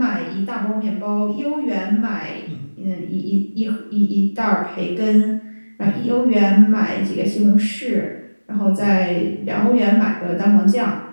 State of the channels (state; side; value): inverted; both; correlation -1.00